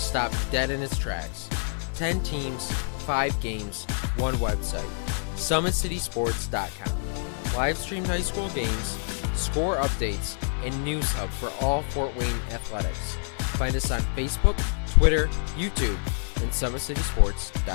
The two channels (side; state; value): right; silent; digital silence